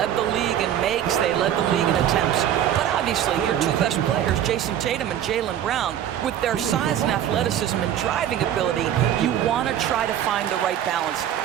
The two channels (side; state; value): left; quieter; 10.6 dB